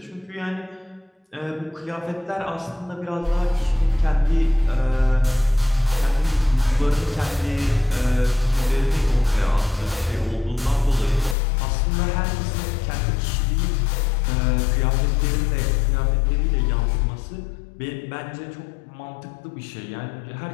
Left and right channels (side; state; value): right; drops out; at 11.4 s